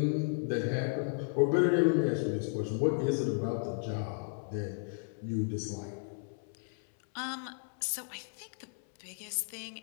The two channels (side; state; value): right; silent; 55 dB below the other